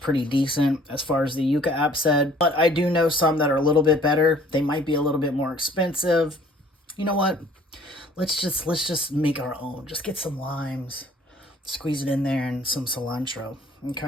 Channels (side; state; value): both; normal; correlation 0.55